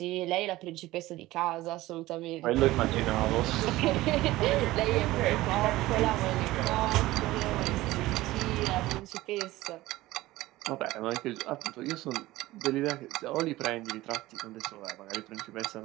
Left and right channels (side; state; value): left; quieter; 17.6 dB